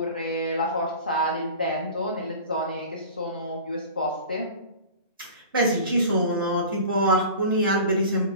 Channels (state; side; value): inverted; both; correlation -0.38